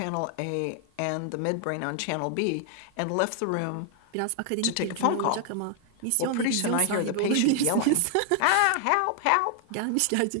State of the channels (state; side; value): different; both; correlation 0.00